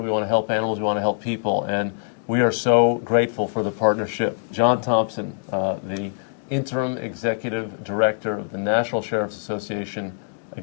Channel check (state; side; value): silent; right; digital silence